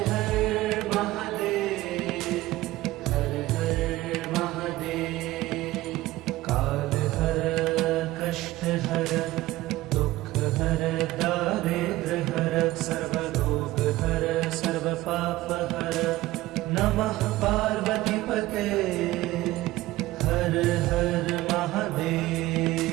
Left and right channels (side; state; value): left; quieter; 17.4 dB